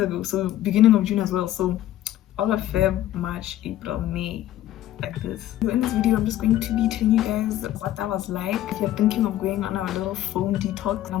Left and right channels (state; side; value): quieter; right; 13.4 dB